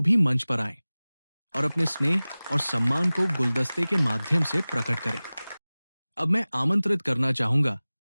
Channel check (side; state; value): both; inverted; correlation -0.99